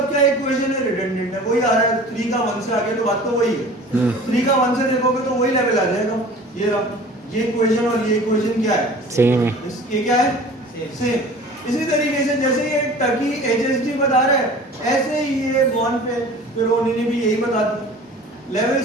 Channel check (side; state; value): both; normal; correlation 0.43